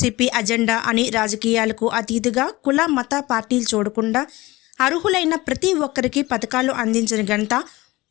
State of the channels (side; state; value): right; quieter; 20.1 dB